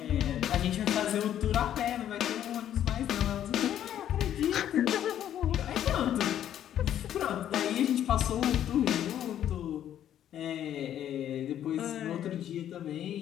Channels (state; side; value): quieter; right; 10.8 dB